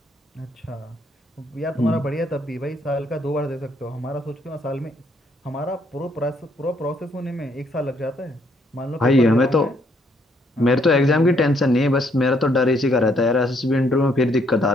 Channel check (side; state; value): both; normal; correlation 0.70